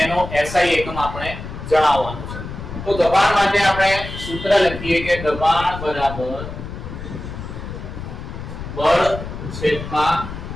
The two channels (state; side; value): noise; left; rumble, 9 dB below the sound